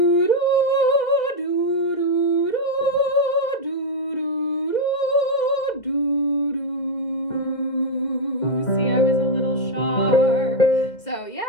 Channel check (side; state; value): right; late; 2.2 ms